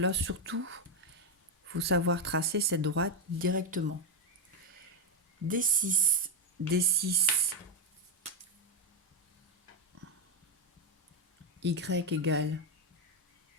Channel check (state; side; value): normal; both; correlation 0.02